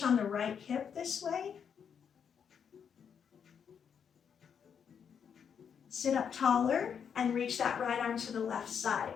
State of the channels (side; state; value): right; quieter; 7.4 dB